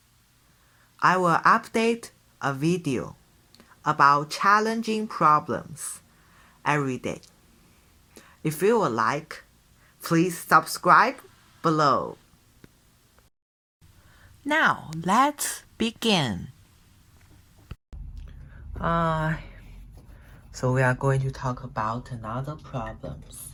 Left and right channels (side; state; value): both; identical; correlation 1.00